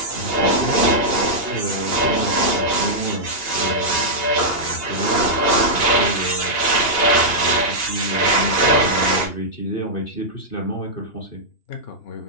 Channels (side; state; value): right; late; 2.8 ms